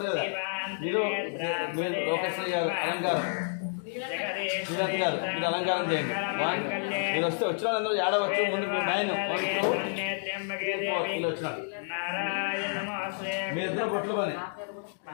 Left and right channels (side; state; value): right; silent; digital silence